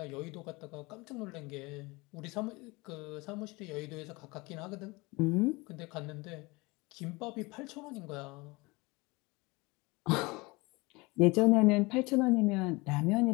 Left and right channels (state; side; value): quieter; right; 24.5 dB